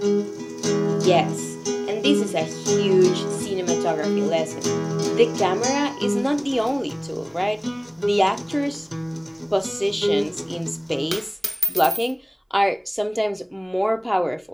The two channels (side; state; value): both; identical; correlation 1.00